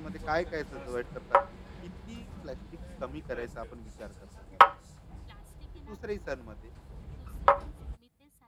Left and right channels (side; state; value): both; identical; correlation 1.00